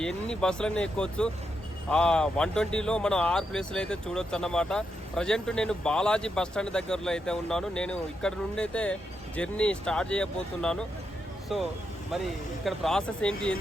ఎన్ని బస్సులన్నీ ఎక్కొచ్చు. ఆ 120లో మనం 6 ప్లేసులు అయితే చూడొచ్చు అన్నమాట. ప్రజెంట్ నేను బాలాజీ బస్ స్టాండ్ దగ్గరలో అయితే ఉన్నాను. నేను ఇక్కడ నుండి అయితే జర్నీ స్టార్ట్ చేయబోతున్నాను. సో మరి ఇక్కడ ప్రాసెస్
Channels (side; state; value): both; normal; correlation 0.83